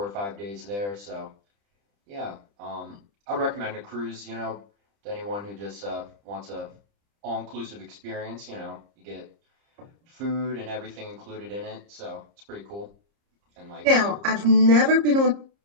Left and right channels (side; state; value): left; late; 30 ms